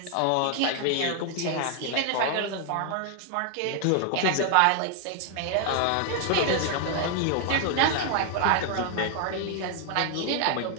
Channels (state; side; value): different; both; correlation 0.00